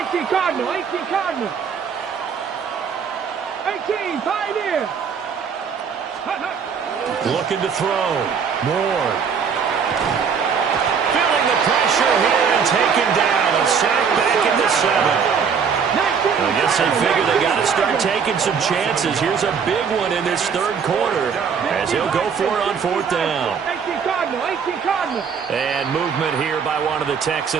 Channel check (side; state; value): left; quieter; 6.5 dB